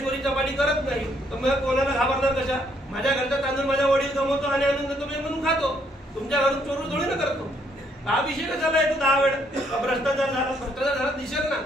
चपाटी करत नाही. तर मग कोणाला घाबरणार कशा. माझ्या घरचा तांदूळ माझ्या वडील कमवतो आणि आणून देतो मी म्हणून खातो. तुमच्या घरून चोरू थोडी ना करतो. हा विषय कशाला येतो 10 वेळ. भ्रष्टाचार झाला दिसेल ना.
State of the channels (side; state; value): both; normal; correlation 0.70